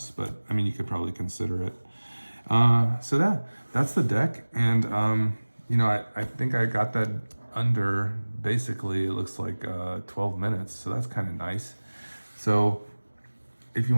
but I mean, you could probably consider it. So that's the deck. And, you know, I think I got that under, basically, it looks like 12 minutes. So that's kind of nice. So if you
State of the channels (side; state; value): both; inverted; correlation -1.00